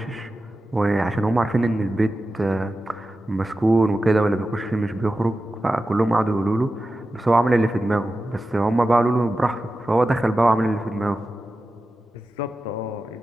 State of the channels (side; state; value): both; normal; correlation 0.93